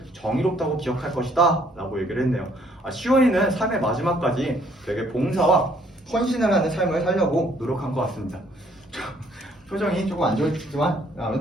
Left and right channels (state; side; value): normal; both; correlation 0.64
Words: 정의롭다고 기억할 것이다 라고 얘기를 했네요. 시원이는 삶의 마지막까지 되게 봉사와 헌신을 하는 삶을 살려고 노력한 것 같습니다. 표정이 조금 안 좋지만